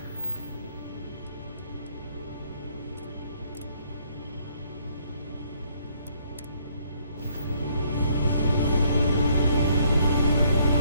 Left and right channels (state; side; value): inverted; both; correlation -0.67